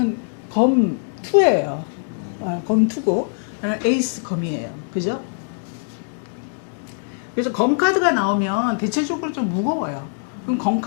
검 2예요. 검 2고 에이스 검이에요. 그죠? 그래서 검 카드가 나오면 대체적으로 좀 무거워요. 그럼 검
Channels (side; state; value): right; silent; digital silence